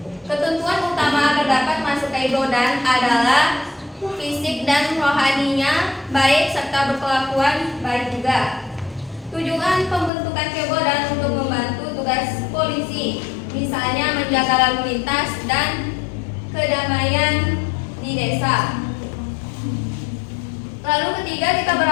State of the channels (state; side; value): drops out; right; at 10.1 s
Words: Ketentuan utama agar dapat masuk Kebodan adalah fisik dan rohaninya baik serta berkelakuan baik juga. Tujuan pembentukan Kebodan untuk membantu tugas polisi, misalnya menjaga lalu lintas dan kedamaian di desa. Lalu ketiga, kita